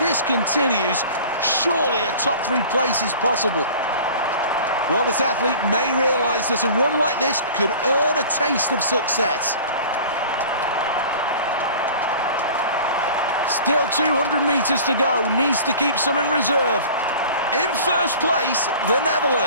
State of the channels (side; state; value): both; inverted; correlation -0.42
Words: continues, surely a top 3 place is possible. Well, this athlete may realise that a run like this could earn a taste of success. Still 200 meters to go, needs to keep some in reserve. In first place, the